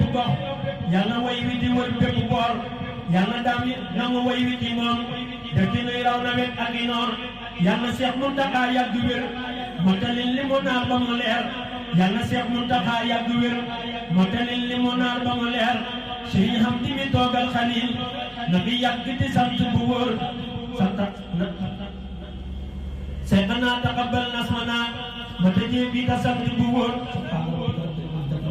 gox yàlla way wi di wër bépp boor yàlla daam yi nangu way wi ci moom dëkk nuy raw nawet ak i noor yàlla Seex Muntaxa yàgg wér motalil li mu naar ba mu leer yàlla Seex Muntaxa yàgg wér motalil li mu naar ba mu leer sëriñ xam di mi toogal Xalil na bi yàgg di sant bu wóor santa seexanaa taqabbal nasmanaa ma tëjee bii ta sant bu wóor.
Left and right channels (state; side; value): identical; both; correlation 1.00